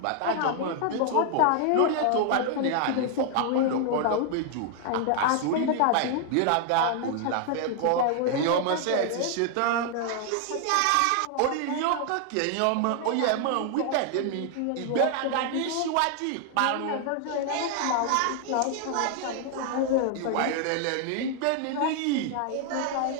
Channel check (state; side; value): different; both; correlation 0.00